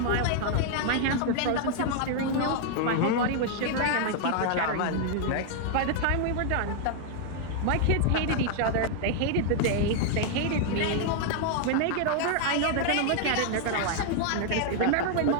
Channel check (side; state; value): both; different; correlation 0.00